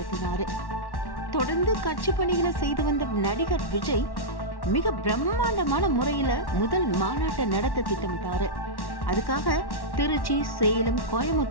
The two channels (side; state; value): right; late; 1.1 ms